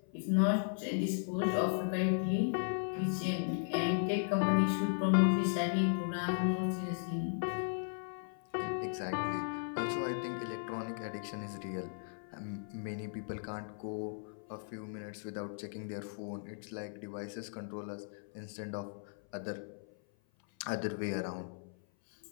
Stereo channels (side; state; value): right; silent; 53 dB below the other